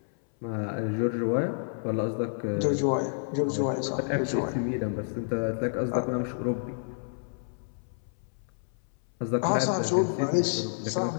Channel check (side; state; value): right; silent; 59 dB below the other